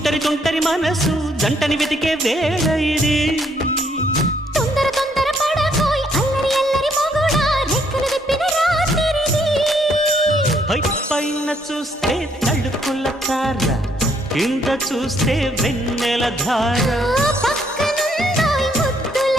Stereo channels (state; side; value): normal; both; correlation 0.70